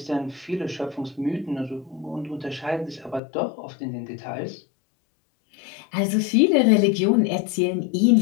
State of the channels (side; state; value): right; drops out; at 3.2 s